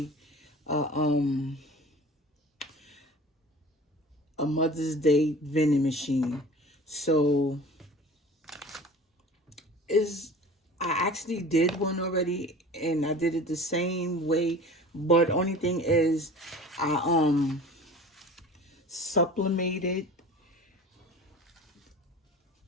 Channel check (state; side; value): normal; both; correlation 0.40